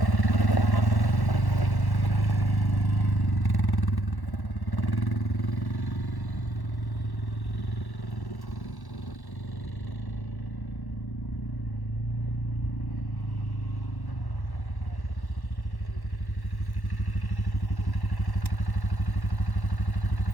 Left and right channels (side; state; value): right; late; 1.1 ms